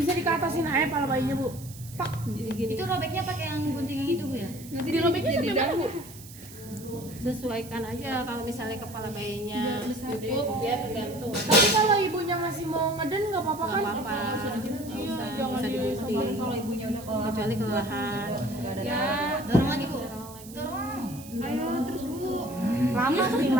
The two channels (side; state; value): right; noise; hiss, 17 dB below the sound